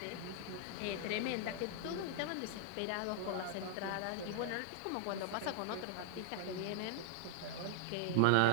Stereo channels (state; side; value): different; both; correlation 0.00